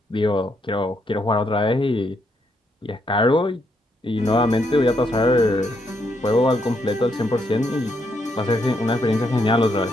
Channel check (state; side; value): normal; both; correlation 0.76